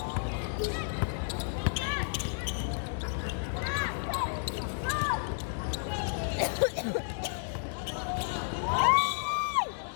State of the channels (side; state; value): right; silent; digital silence